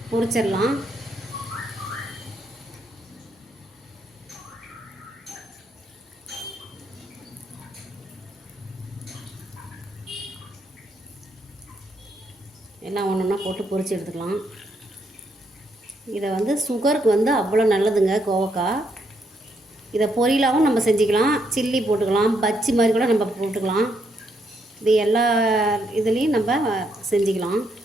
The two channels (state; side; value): normal; both; correlation 0.76